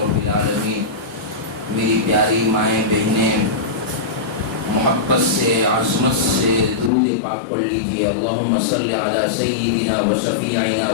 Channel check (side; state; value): right; drops out; at 6.9 s